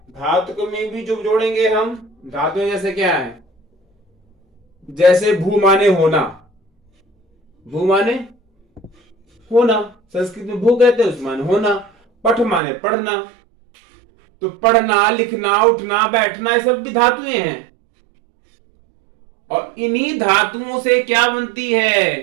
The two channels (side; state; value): left; drops out; at 12.6 s